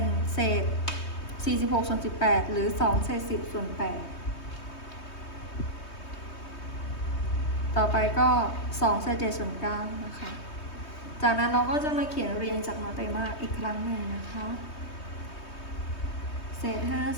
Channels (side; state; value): right; late; 3.2 ms